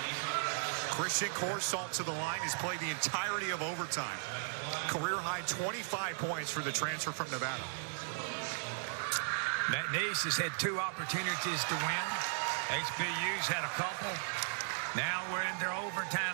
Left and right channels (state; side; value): silent; left; 53 dB below the other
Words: Christian Corsalt to the line has played the entirety of overtime. Career high 25 points for the transfer from Nevada. McNeese has had 2 opportunities to win. HBU's had a couple. Now we're in their